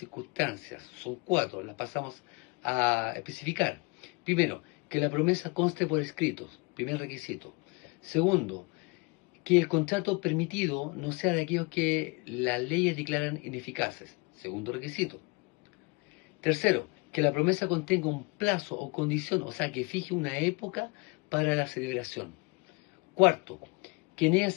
Son 4, las pasamos a especificar. Primero, que la promesa conste por escritos, primer requisito. Segundo, que el contrato permitido no sea de aquellos que las leyes declaran ineficaces, segundo requisito. Tercero, que la promesa contenga un plazo o condición, o sea, que fije una época para la celebración. Cuarto, que en ella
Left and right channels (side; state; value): right; quieter; 28.2 dB